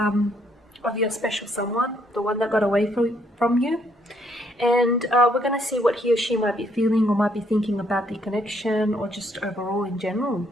your special someone, the one that got away from you. And we're going to see what he or she might be feeling or might be thinking about the connection or just overall in general.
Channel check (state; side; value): normal; both; correlation 0.70